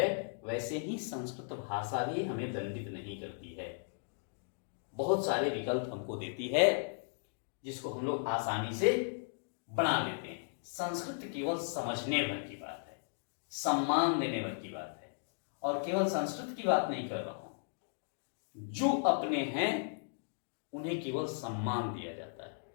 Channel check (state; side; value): silent; right; digital silence